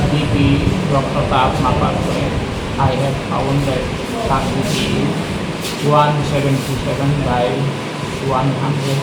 বিপি রক্তচাপ মাপার করে I have found that তার বিপি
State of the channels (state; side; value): identical; both; correlation 1.00